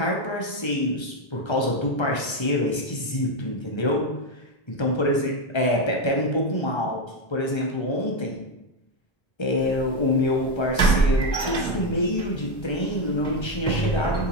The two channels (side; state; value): right; late; 1.3 ms